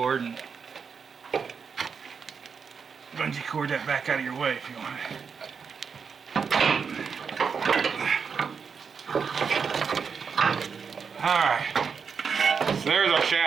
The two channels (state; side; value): quieter; left; 6.0 dB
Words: and bungee cord that back out of your way if you want it. Alright, so there's our